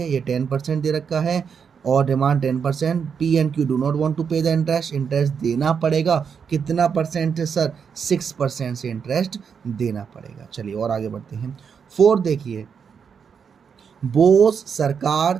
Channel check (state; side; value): quieter; left; 6.7 dB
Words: ये 10% दे रखा है और demand 10%। P and Q do not want to pay the interest, interest देना पड़ेगा। कितना परसेंट है सर, 6% से इंटरेस्ट देना पड़ेगा। चलिए और आगे बढ़ते हैं। 4 देखिए, बोस, सरकार,